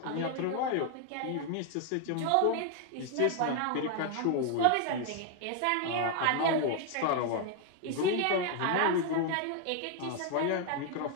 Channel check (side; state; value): both; different; correlation 0.00